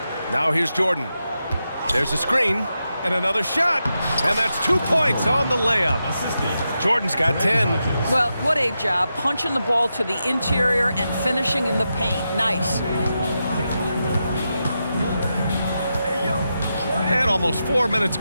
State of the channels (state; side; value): inverted; both; correlation -0.88